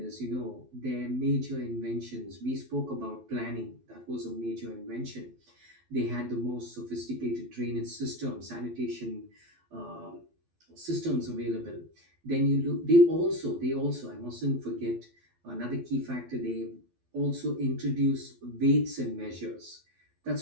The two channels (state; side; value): late; left; 12 ms